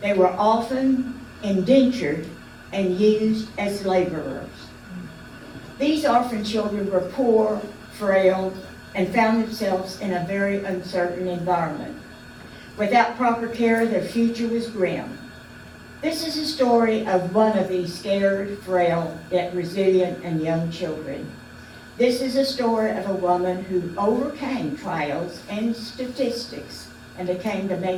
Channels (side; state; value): both; identical; correlation 1.00